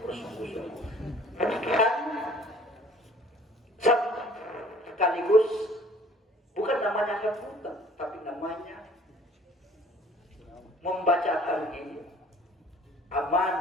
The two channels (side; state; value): both; normal; correlation 0.53